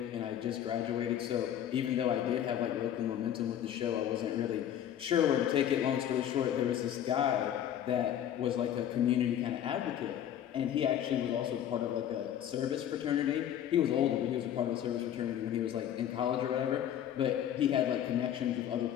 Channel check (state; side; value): quieter; right; 10.4 dB